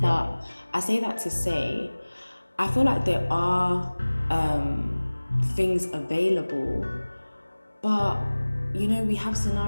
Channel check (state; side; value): inverted; both; correlation -1.00